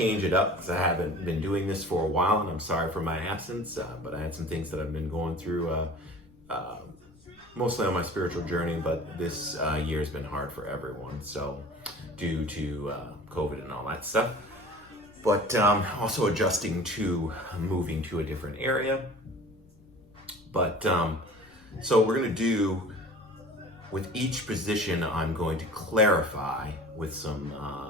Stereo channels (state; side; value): noise; left; rumble, 27 dB below the sound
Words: it up because I haven't been doing this for a while, and I'm sorry for my absence, but I had some things that I've been going through mostly on my spiritual journey, but this year has been hard for everyone, so due to COVID and all that stuff. But also adjusting to moving to a different area. But so we're going to do, with each position, I'm going to clarify with some,